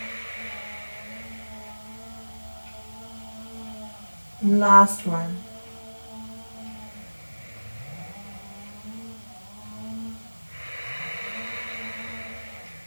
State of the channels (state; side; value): inverted; both; correlation -1.00